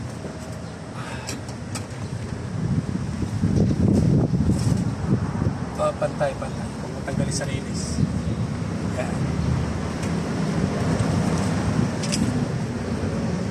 Pantay. Kung matanggalin sa linis. Yan.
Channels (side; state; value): both; identical; correlation 1.00